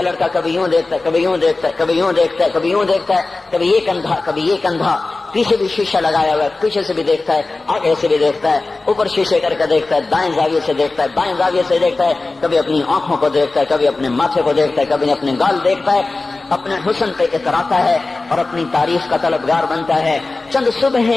لڑکا کبھی یوں دیکھتا ہے، کبھی یوں دیکھتا ہے، کبھی یوں دیکھتا ہے، کبھی یوں دیکھتا ہے، کبھی یہ کندھا کبھی یہ کندھا، پیچھے بھی شیشہ لگایا ہوا ہے، پیچھے سے بھی دیکھتا ہے، آگے سے بھی دیکھتا ہے، اوپر شیشے کر کے دیکھتا ہے، دائیں زاویے سے دیکھتا ہے، بائیں زاویے سے دیکھتا ہے، کبھی اپنی آنکھوں کو دیکھتا ہے، کبھی اپنے ماتھے کو دیکھتا ہے، کبھی اپنے گال دیکھتا ہے، اپنے حسن پہ اتراتا ہے اور اپنی تعریف کا طلبگار بنتا ہے۔ چند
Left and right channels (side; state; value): right; quieter; 3.4 dB